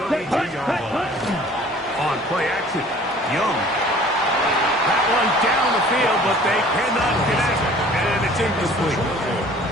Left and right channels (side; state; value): both; normal; correlation 0.50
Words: 32-yard line. On play action, Young. That one down the field, but they cannot connect, and it's incomplete.